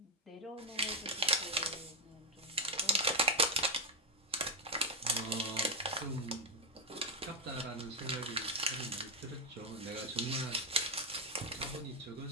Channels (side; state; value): both; normal; correlation 0.03